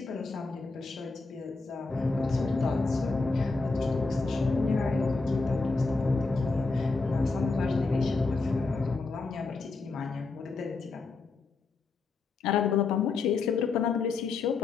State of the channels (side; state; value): right; quieter; 4.0 dB